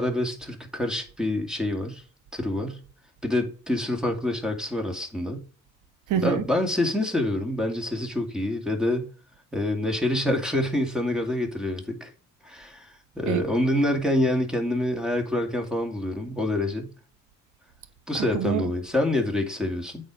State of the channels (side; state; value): both; normal; correlation 0.66